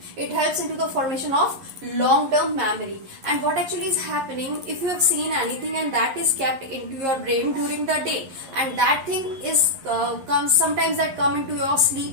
It helps into the formation of long term memory. And what actually is happening, if you have seen anything and that is kept into your brain during the day, and that thing is comes sometimes that come into your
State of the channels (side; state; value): left; late; 11 ms